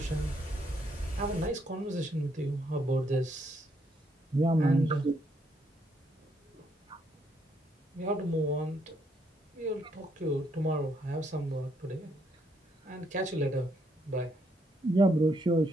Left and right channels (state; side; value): normal; both; correlation 0.73